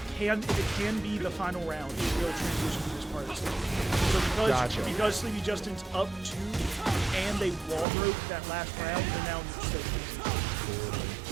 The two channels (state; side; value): drops out; left; at 7.9 s